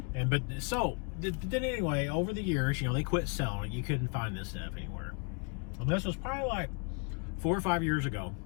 Then anyway, over the years, you know, they quit selling it. You couldn't find this stuff anywhere. And this was probably like 4 or 5 years ago.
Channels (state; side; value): quieter; right; 35.2 dB